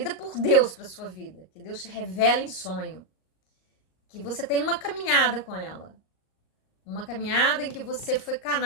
por Deus para sua vida, que Deus te revela em sonho, que você tem uma caminhada com ela. Uma caminhada em que você foi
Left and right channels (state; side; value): late; right; 38 ms